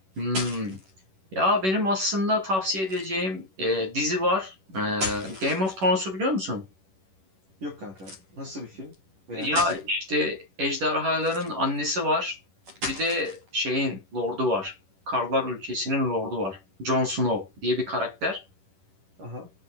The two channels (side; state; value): left; late; 11 ms